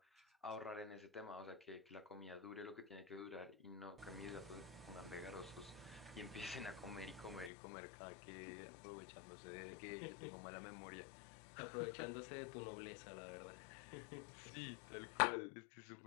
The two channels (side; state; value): right; drops out; at 7.5 s